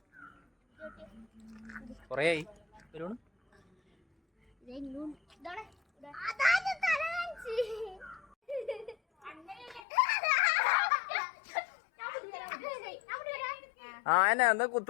കൊറേയായി ആ എന്നാ എന്താ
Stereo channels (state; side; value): drops out; right; at 9.8 s